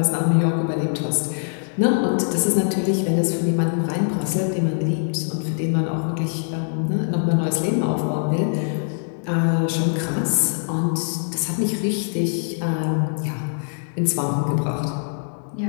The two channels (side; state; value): right; silent; digital silence